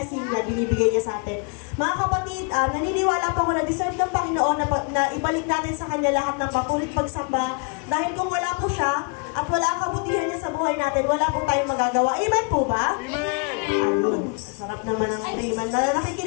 na binibigay niya sa atin. Mga kapatid, naniniwala po ako na deserve ng Panginoon na ibalik natin sa Kanya lahat ng patuloy pagsamba. Dahil kung wala po siya at wala ang kabutihan niya sa buhay natin, wala po tayong magagawa. Amen po ba? Amen! Ayun. Sarap naman ang amen.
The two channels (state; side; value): quieter; right; 36.7 dB